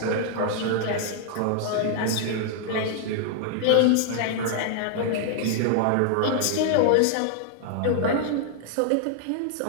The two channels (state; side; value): different; both; correlation 0.00